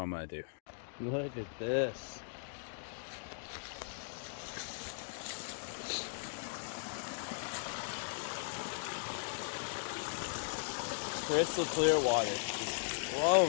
I'm gonna do. Look at this. Crystal clear water, just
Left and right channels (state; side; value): silent; right; digital silence